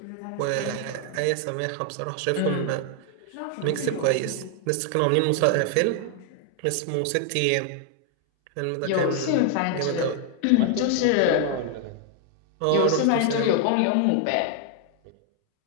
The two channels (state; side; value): different; both; correlation 0.00